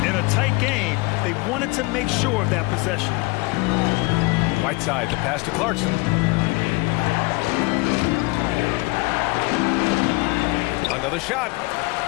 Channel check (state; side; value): quieter; right; 25.2 dB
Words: In a tight game, they wanted to make sure of that possession. Whiteside, the pass to Clarkson. Another shot.